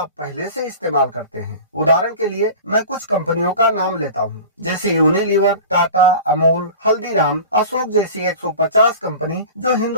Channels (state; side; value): inverted; both; correlation -0.38